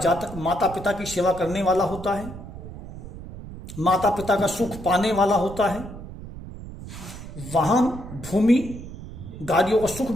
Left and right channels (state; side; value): noise; right; rumble, 12 dB below the sound